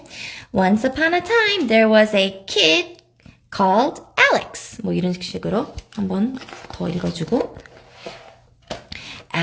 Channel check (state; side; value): identical; both; correlation 1.00